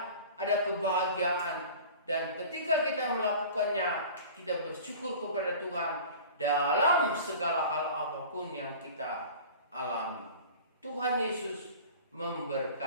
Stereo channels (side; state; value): both; inverted; correlation -0.40